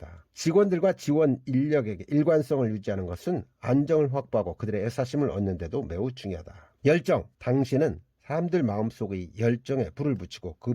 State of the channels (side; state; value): both; identical; correlation 1.00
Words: 직원들과 지원 인력에게 일관성을 유지하는 것은 안정을 확보하고 그들의 애사심을 얻는 데도 매우 중요하다. 열정. 당신은 사람들 마음속의 열정에 불을 붙이고 그